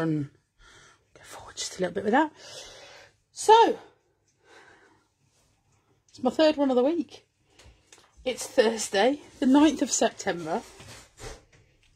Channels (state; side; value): identical; both; correlation 1.00